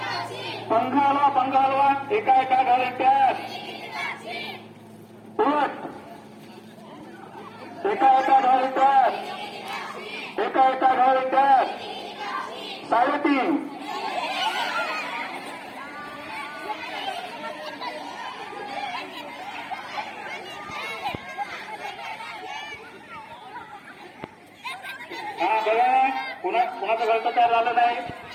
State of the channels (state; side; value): identical; both; correlation 1.00